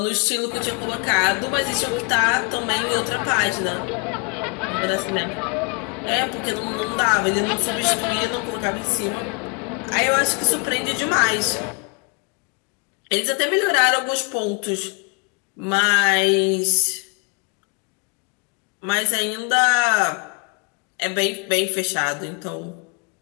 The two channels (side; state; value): right; quieter; 34.7 dB